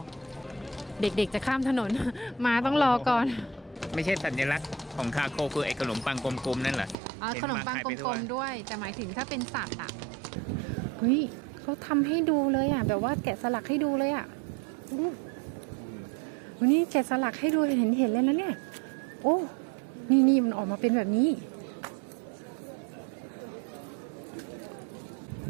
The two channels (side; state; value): left; drops out; at 7.0 s